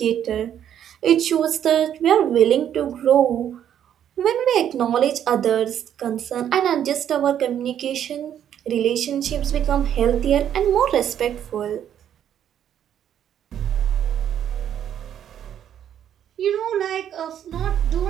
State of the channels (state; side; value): quieter; left; 9.9 dB